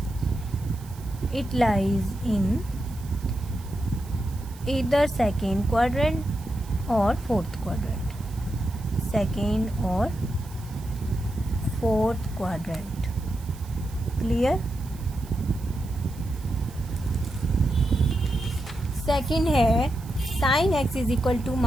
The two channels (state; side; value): noise; right; hiss, 22 dB below the sound